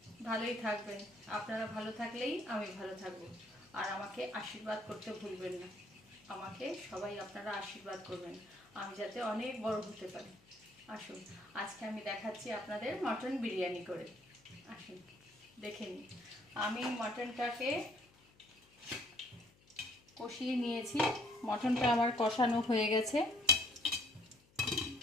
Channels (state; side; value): noise; left; hum, 29 dB below the sound